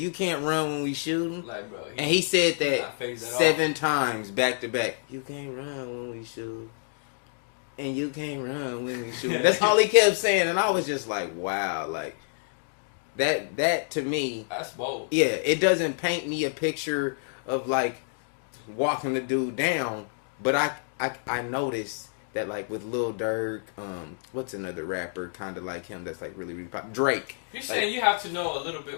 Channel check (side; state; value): right; silent; digital silence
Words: can't run when we shooting. Like, bro, and he said that 7 times back to back. You can't run when we shoot. And you can't run when we shoot. That's all he kept saying. And I was just like, wow. Like, that to me. That's bold. Yeah, it doesn't paint me a picture of, like, walking the dude down. But I noticed that, like, with Lil Durk, what's another rapper kind of like him that's, like, really, really popular? Drake. You're saying you have to know a little